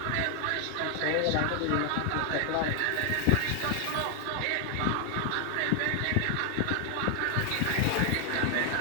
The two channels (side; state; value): both; different; correlation 0.00